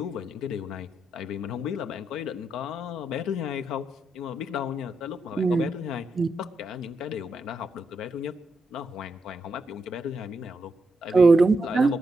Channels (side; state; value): both; normal; correlation 0.83